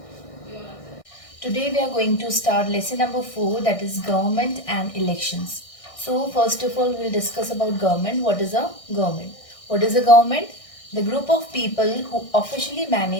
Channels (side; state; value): right; late; 1.6 ms